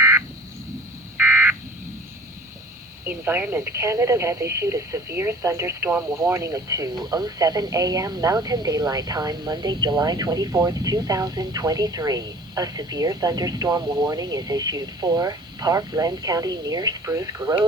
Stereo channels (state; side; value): normal; both; correlation 0.45